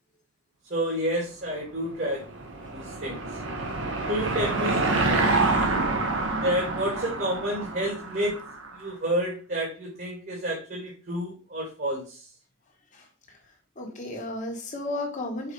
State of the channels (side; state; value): both; normal; correlation 0.05